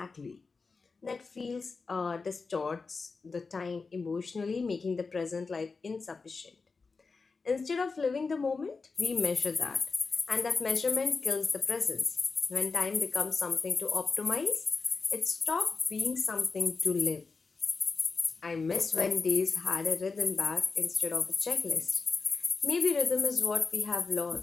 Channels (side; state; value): right; quieter; 4.4 dB